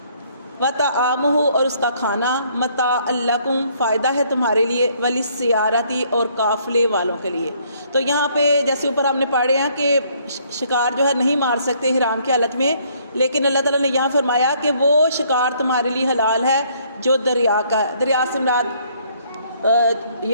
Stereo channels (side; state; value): both; inverted; correlation -0.65